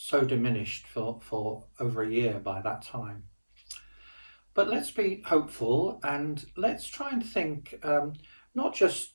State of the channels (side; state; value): both; inverted; correlation -1.00